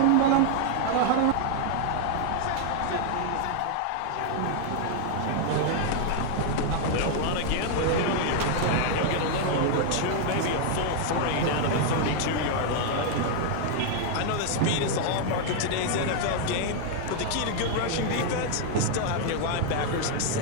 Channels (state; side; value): different; both; correlation 0.00